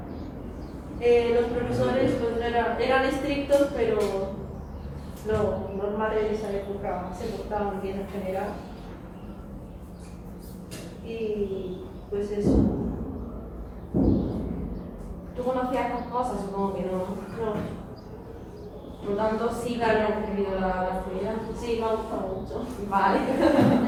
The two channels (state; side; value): identical; both; correlation 1.00